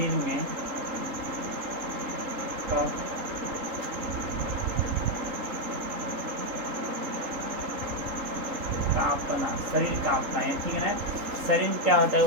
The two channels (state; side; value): late; left; 3.8 ms